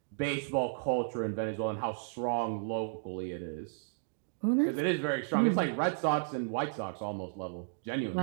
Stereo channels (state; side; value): silent; left; digital silence